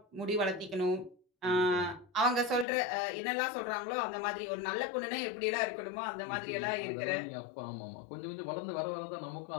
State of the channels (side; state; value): right; drops out; at 2.7 s